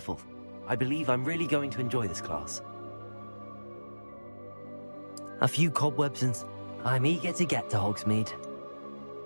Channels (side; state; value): both; inverted; correlation -1.00